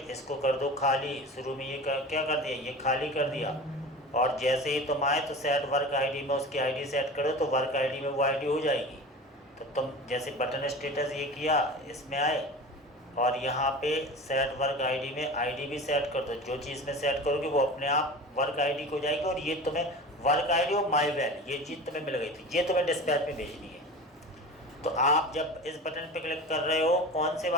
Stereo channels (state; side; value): normal; both; correlation 0.34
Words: इसको कर दो खाली। शुरू में ये क्या कर दिया, ये खाली कर दिया, और जैसे ही तुम आए तो सेट वर्क आईडी में उसकी आईडी सेट करो, तो वर्क आईडी में वो आईडी हो जाएगी। तो तुम जैसे बटन स्टेटस ये किया, इसमें आए और यहाँ पे सेट वर्क आईडी में आईडी भी सेट कर दो। जो चीज़ में सेट करोगे वो अपने आप वर्क आईडी को जाएगी, और ये तुम्हें वर्क आईडी और माई वैल ये चीज़ तुम्हें मिल गई थी, ये तुम्हें डिस्पैच में भेजनी है। तो आप जब इस बटन पे क्लिक कर रहे हो, कौन से